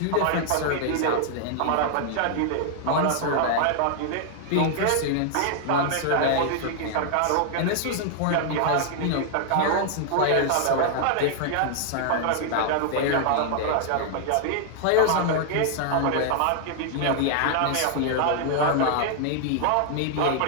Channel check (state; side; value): different; both; correlation 0.00